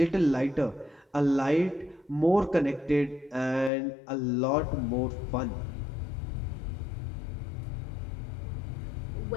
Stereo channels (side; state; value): right; drops out; at 3.7 s